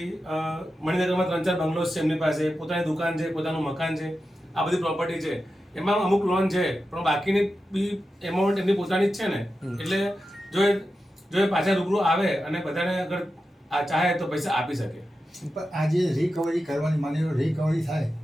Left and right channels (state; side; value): normal; both; correlation 0.91